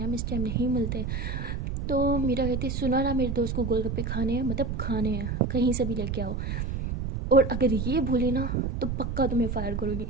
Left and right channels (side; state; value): right; noise; rumble, 3 dB below the sound